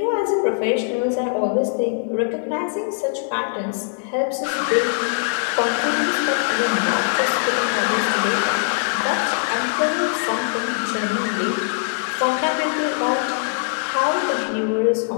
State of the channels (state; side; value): silent; right; digital silence